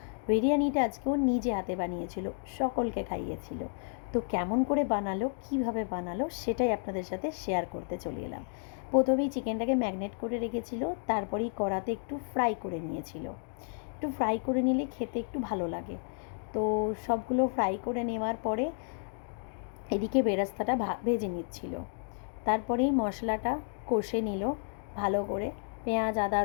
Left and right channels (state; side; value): silent; right; 57 dB below the other